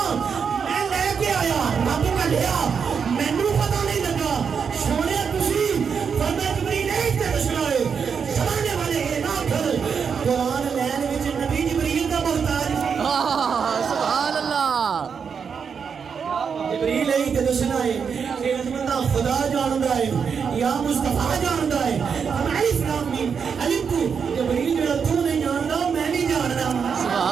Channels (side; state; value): left; quieter; 6.4 dB